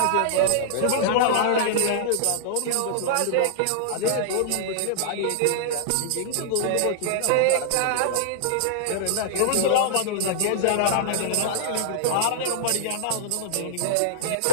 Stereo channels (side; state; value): both; different; correlation -0.02